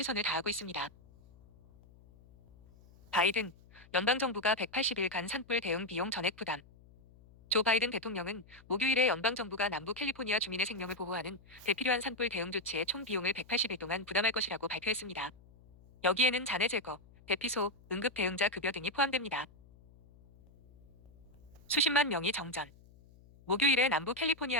다하고 있습니다. 바이든, 연방정부가 180일간 산불 대응 비용 전액 부담. 조 바이든 대통령은 목요일에 연방정부가 남부 캘리포니아 주민의 생명을 보호하는 대필요한 산불 대응 조치의 총 비용을 180일 동안 부담할 것이라고 발표했습니다. 여기에는 잔해 제거, 대피소, 응급대응자 급여 등이 포함됩니다. 수십만 명이 정전. 목요일에 남부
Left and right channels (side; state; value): left; noise; hum, 25 dB below the sound